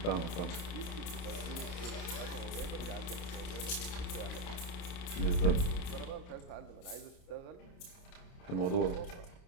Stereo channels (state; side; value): late; right; 28 ms